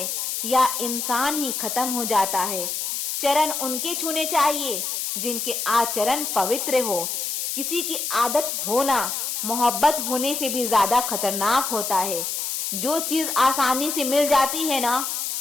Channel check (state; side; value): noise; left; hiss, 2 dB below the sound